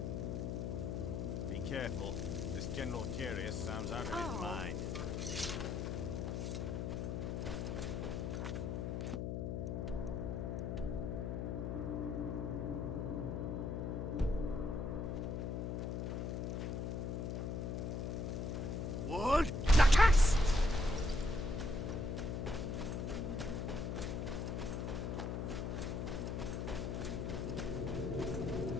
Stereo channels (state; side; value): noise; left; hum, 2 dB below the sound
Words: Be careful. This General Carius sounds out of his mind. What? Nakas!